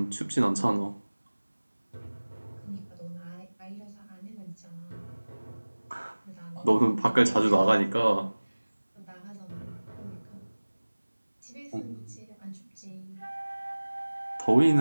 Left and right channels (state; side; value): inverted; both; correlation -1.00